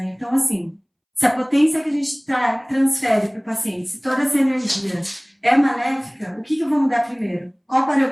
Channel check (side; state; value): both; identical; correlation 1.00